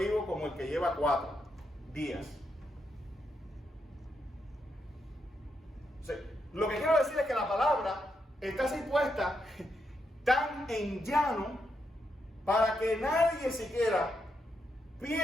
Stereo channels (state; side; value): normal; both; correlation 0.82